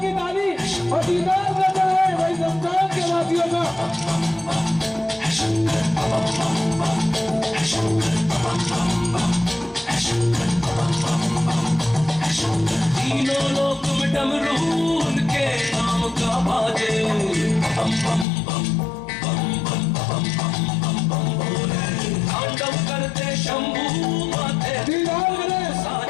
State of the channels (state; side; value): drops out; right; at 18.2 s